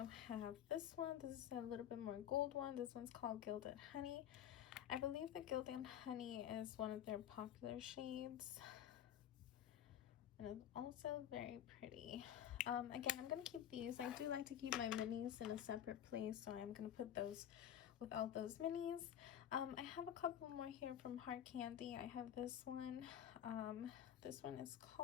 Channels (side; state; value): right; quieter; 10.3 dB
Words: have this one. This is a little bit more gold one. This one's called Gilded Honey. I believe the Gilded Honey is one of their popular shades. and it's also very pretty. Again, I'm gonna keep these. I do like to keep my minis in a separate place, so I'm gonna put those with all those minis. I have a couple more here from Heart Candy. I have this one. This one is